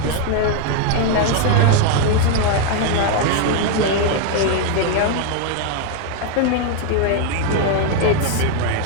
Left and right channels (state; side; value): different; both; correlation 0.01